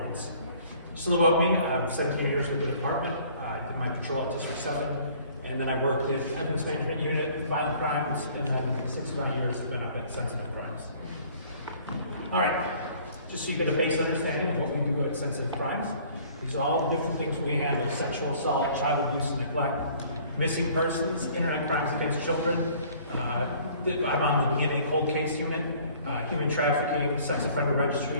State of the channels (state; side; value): inverted; both; correlation -0.54